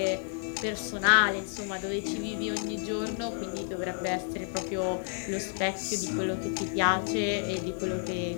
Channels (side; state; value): right; silent; digital silence